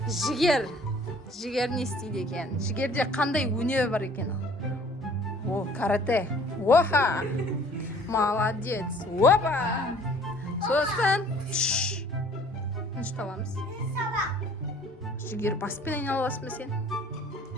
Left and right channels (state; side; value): normal; both; correlation 0.53